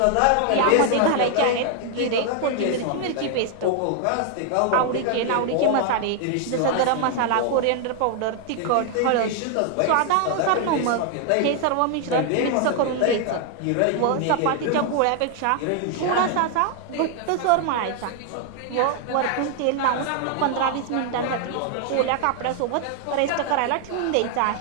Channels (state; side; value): different; both; correlation 0.00